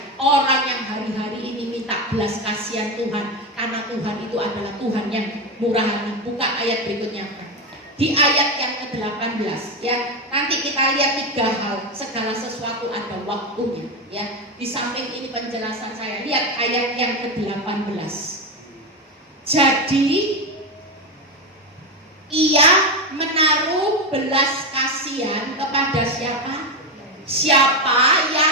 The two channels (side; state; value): both; normal; correlation 0.14